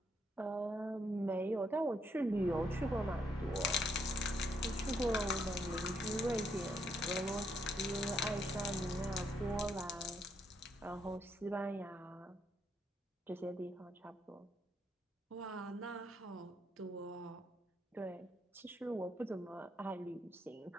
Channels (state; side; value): normal; both; correlation 0.75